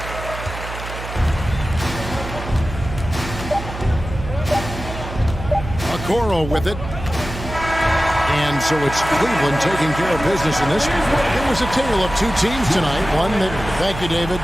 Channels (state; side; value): noise; right; hum, 9 dB below the sound